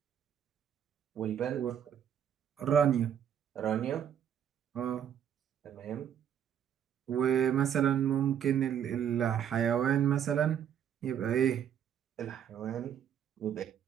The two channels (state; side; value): quieter; left; 9.2 dB